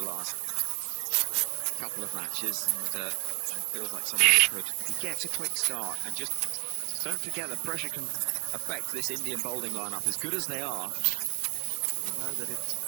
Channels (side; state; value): left; quieter; 29.6 dB